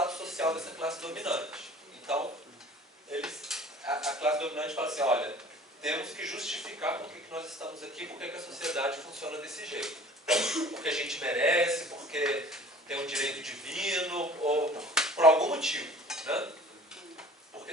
social dessa classe dominante. Então, a classe dominante fala assim, olha, temos que justificar por que nós estamos aqui, por que a sociedade funciona desse jeito. Porque a gente merece, porque tem um direito divino, ou por algum motivo, né? Porque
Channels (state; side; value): normal; both; correlation 0.47